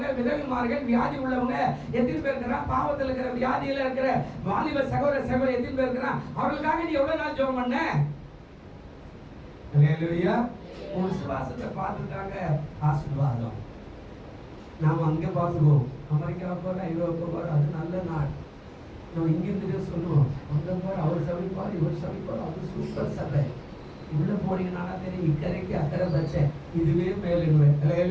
விதவிமார்கள், வியாதி உள்ளவங்க எத்தனை பேர் இருக்கிறா, பாவத்தில் இருக்கிற வியாதியில இருக்கிற வாலிப சகோதர சகோதரி எத்தனை பேர் இருக்கிறா, அவர்களுக்காக நீ எவ்வளவு நாள் ஜெபம் பண்ண? அல்லேலூயா. உன் விசுவாசத்தை பார்த்துட்டாங்க ஆசீர்வாதம். நாம் அங்கே பார்த்துக்குவோம், அமெரிக்கா போற, ஐரோப்பா போற, அது நல்ல நாள். நம்ம இங்கிருந்து சொல்லுவோம், அங்கே போற அவர் சமைப்பார், இவர் சமைப்பார், அது சூப்பர் சபை. உள்ள போனீங்கன்னா தெரியும், இக்கரைக்கு அக்கறை பச்சை, இதுவே மேலுங்குவேன்.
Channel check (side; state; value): both; identical; correlation 1.00